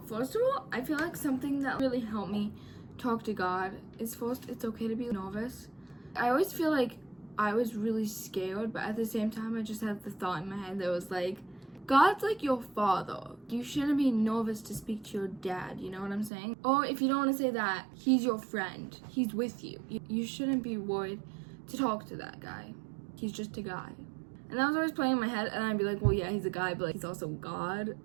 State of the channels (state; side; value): drops out; left; at 16.3 s